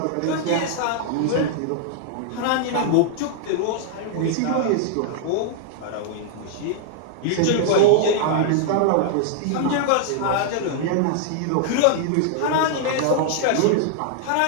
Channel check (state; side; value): different; both; correlation -0.01